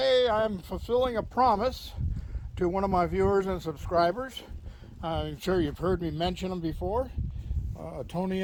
I'm fulfilling a promise to one of my viewers and subscribers. I'm sure you've heard me mention them before. Tony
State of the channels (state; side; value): identical; both; correlation 1.00